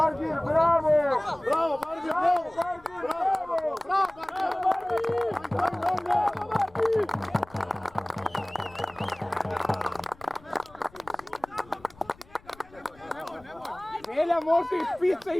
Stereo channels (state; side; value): noise; left; rumble, 25 dB below the sound